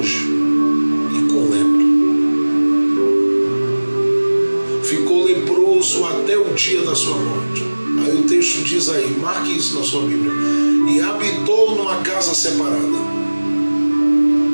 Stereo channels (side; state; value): both; inverted; correlation -1.00